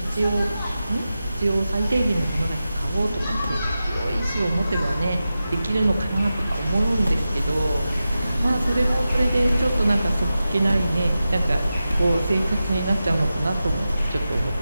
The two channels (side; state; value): both; inverted; correlation -0.92